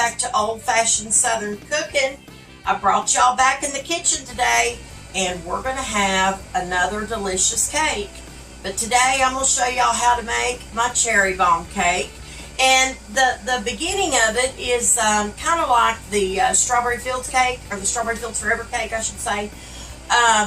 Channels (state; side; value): identical; both; correlation 1.00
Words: to Old Fashioned Southern Cooking. I brought y'all back in the kitchen today and we're going to have another delicious cake. But today I'm going to show y'all how to make my cherry bomb cake. And the beginning of it is kind of like the Strawberry Fields cake, or the Strawberry Fields Forever cake I should say.